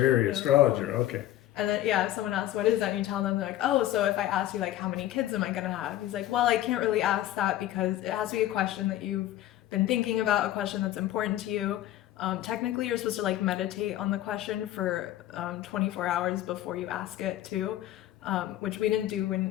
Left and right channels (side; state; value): right; quieter; 13.8 dB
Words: astrologer, okay. And then, yeah, if someone asks, what is that? And you tell them, they're like, oh, so if I ask you, like, how many kids am I going to have? He's like, well, I can't really ask that because it has to be a question that you've been thinking about, a question that's important to you. Technically, you're supposed to, like, meditate on the question for 24 hours before you ask it, too, which we didn't do